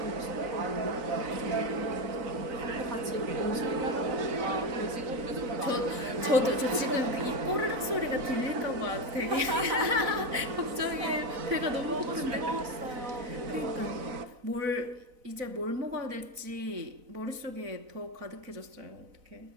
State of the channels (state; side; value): late; left; 4.0 ms